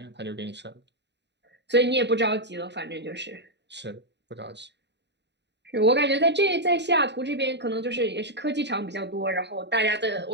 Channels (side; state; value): left; late; 0.50 ms